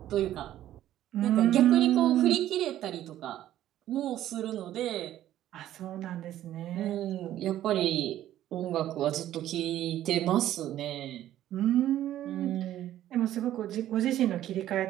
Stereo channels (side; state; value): left; quieter; 12.7 dB